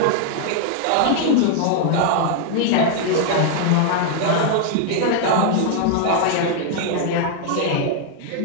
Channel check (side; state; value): both; different; correlation 0.00